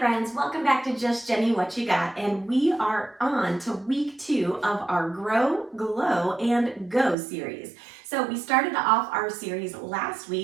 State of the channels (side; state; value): left; drops out; at 7.2 s